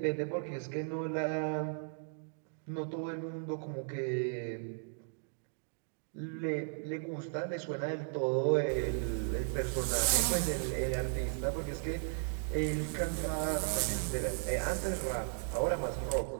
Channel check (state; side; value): silent; left; digital silence